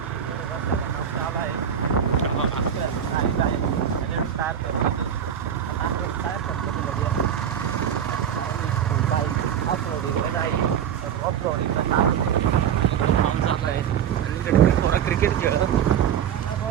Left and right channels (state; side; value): quieter; left; 8.8 dB